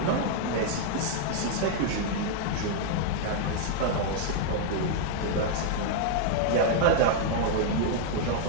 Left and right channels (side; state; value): both; different; correlation -0.01